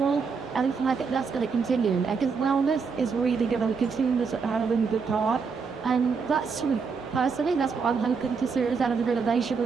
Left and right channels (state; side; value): quieter; left; 5.4 dB